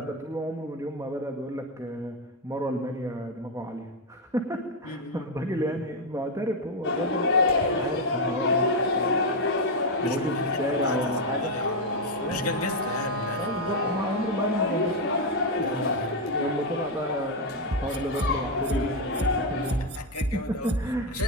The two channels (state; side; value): normal; both; correlation 0.04